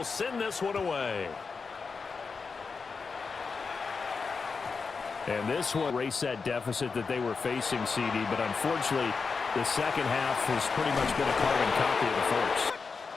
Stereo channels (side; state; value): right; quieter; 4.9 dB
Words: send this one away. And this one race that deficit that they were facing, CD, but unfortunately the second half has pretty much been a carbon copy of the first.